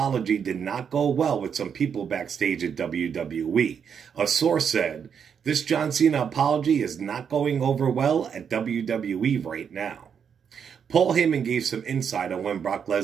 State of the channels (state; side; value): quieter; left; 7.3 dB